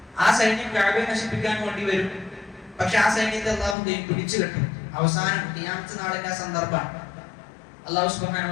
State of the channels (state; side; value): drops out; right; at 3.8 s